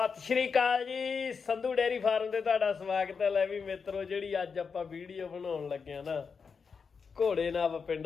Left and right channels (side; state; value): right; quieter; 5.6 dB